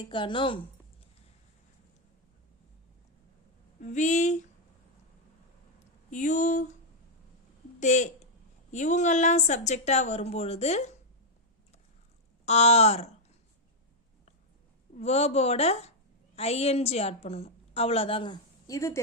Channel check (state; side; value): normal; both; correlation -0.02